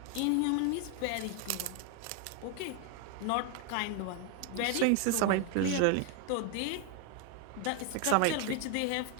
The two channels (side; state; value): both; different; correlation 0.01